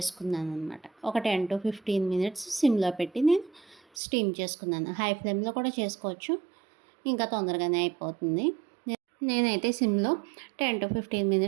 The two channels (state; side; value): drops out; left; at 3.8 s